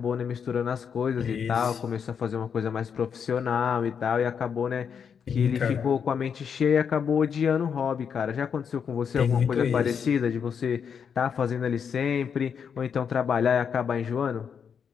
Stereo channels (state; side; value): quieter; right; 7.1 dB